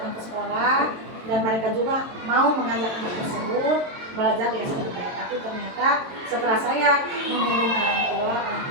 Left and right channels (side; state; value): left; late; 22 ms